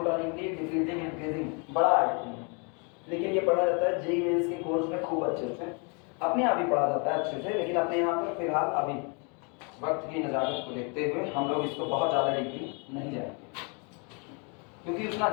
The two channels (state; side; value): quieter; right; 35.0 dB